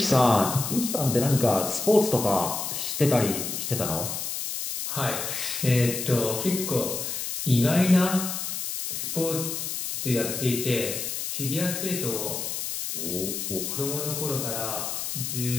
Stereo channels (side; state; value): left; noise; hiss, 4 dB below the sound